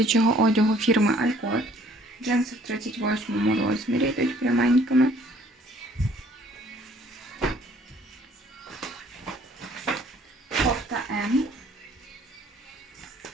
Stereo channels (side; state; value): both; normal; correlation 0.59